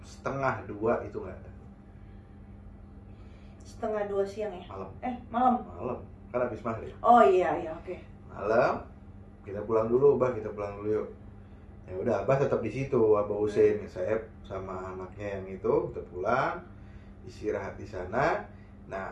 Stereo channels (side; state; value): both; identical; correlation 1.00